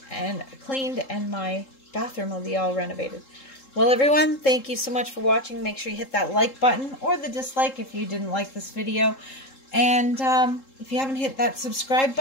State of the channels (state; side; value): late; right; 3.7 ms